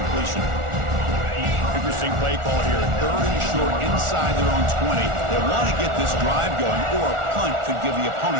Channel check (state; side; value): late; left; 1.4 ms